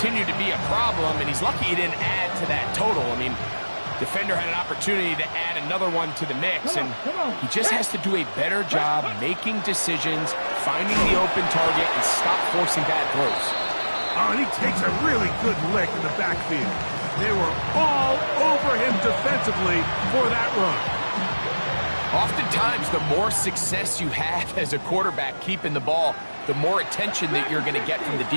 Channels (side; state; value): both; inverted; correlation -1.00